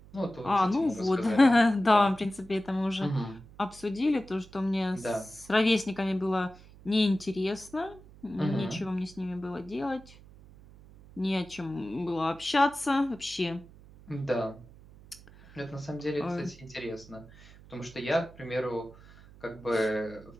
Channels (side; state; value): right; noise; hum, 22 dB below the sound